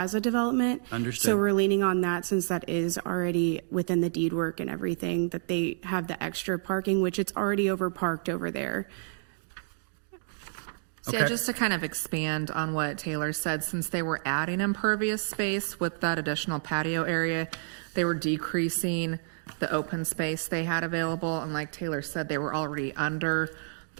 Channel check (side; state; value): left; silent; digital silence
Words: development. Understood. So we're leaning on that, since that is already within the deed work and everything, that they have the extra parking, which it's already overparked over there. So yeah, just to kind of expand on what Taylor said, since they were adding impervious space with that additional patio area, they were decreasing the open space they had available. And like Taylor said, they were already under